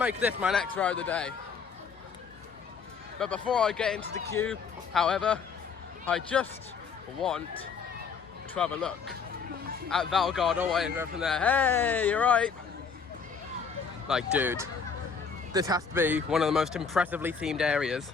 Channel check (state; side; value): quieter; right; 5.8 dB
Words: this my next ride of the day. But before I get into the queue, however, I just want to have a look at Valgard all the way from there. Hey, you're right. Like, dude, this has to be one of the most impressively themed areas